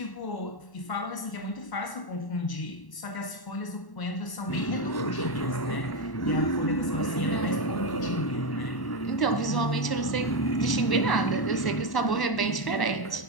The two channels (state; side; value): late; right; 1.1 ms